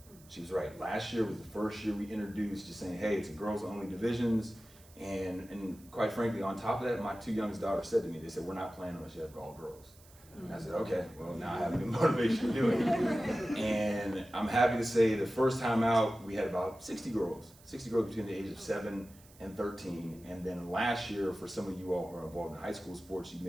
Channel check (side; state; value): right; noise; hiss, 25 dB below the sound